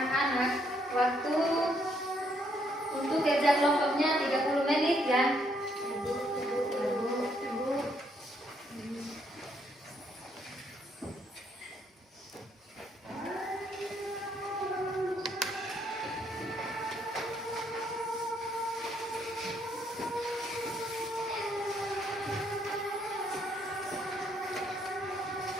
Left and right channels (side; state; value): both; normal; correlation 0.72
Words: waktu untuk kerja kelompoknya 30 menit ya.